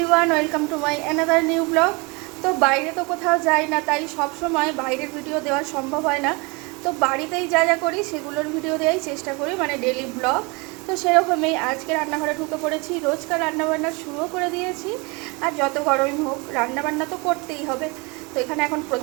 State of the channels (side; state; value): left; quieter; 28.6 dB